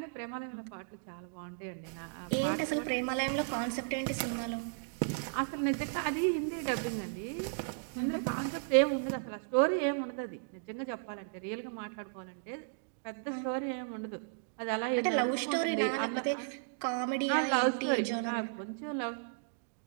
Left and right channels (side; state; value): left; silent; digital silence